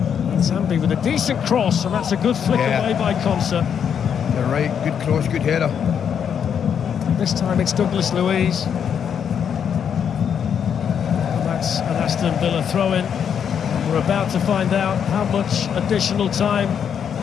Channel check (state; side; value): quieter; right; 7.9 dB